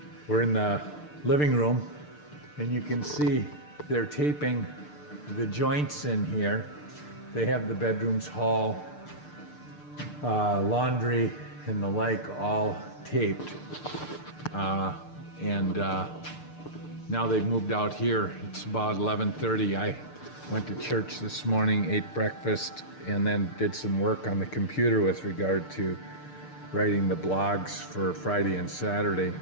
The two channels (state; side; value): late; right; 6.7 ms